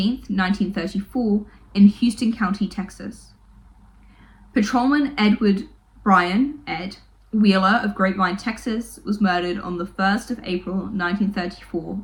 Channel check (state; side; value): identical; both; correlation 1.00